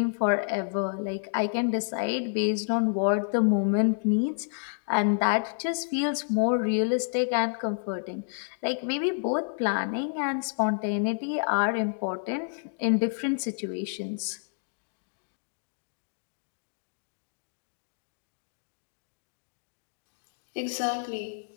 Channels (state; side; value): silent; right; digital silence